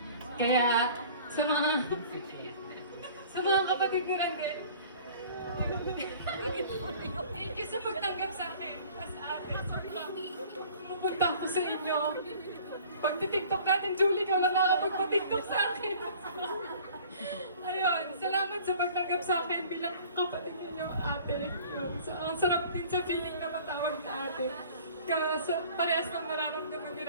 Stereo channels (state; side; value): inverted; both; correlation -0.48